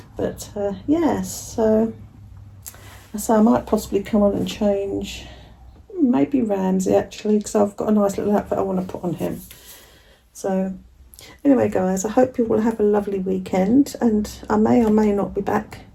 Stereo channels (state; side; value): identical; both; correlation 1.00